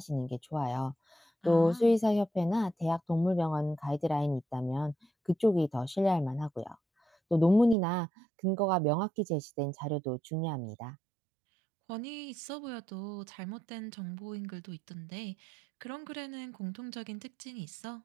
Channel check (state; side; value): drops out; left; at 7.8 s